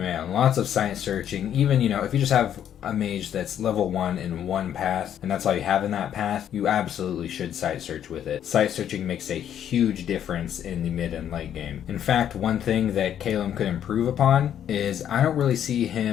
lots of site searching. Even, if you just have a mage that's level 1 in one path, and that's all you have in that path, you absolutely should site search with it. Site searching makes a huge difference in the mid and late game. In fact, one thing that Kaelen could improve upon is I don't really see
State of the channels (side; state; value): right; quieter; 9.9 dB